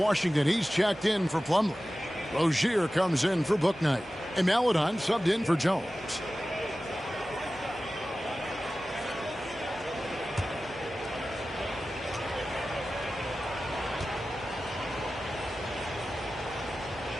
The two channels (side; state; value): both; normal; correlation 0.95